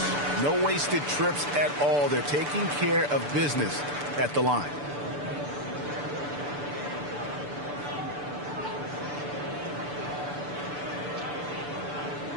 No wasted trips at all. They're taking care of business at the line.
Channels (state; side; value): late; left; 6.9 ms